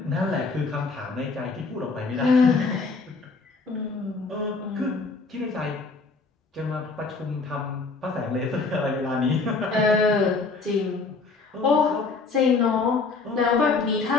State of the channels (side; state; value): right; quieter; 4.1 dB